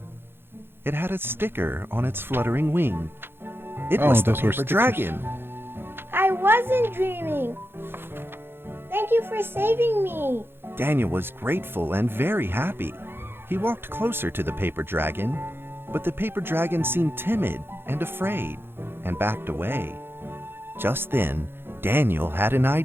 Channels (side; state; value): left; late; 0.11 ms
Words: It had a sticker on its fluttering wing. It Oh, was the those were paper stickers. dragon. I wasn't dreaming. Thank you for saving me. Daniel was grateful and very happy. He walked closer to the paper dragon, but the paper dragon seemed timid and afraid and backed away. Just then, Daniel had an